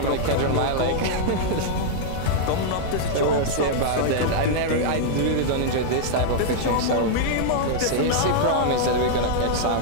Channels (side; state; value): both; different; correlation -0.01